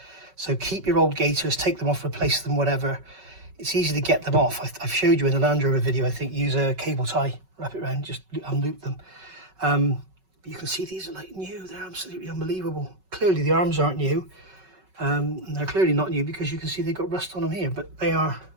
So keep your old gaiters, take them off, replace them, whatever. It's easy to get them off. I've showed you in the Land Rover video, I think, use a cable tie, wrap it around, just unloop them. But you can see these are like new, they're absolutely unbelievable. Clearly the arms aren't new. And they're clearly not new because you can see they've got rust on them here, but they are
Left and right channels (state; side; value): late; left; 5.3 ms